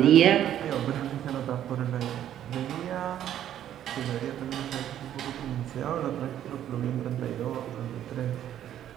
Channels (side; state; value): left; quieter; 11.0 dB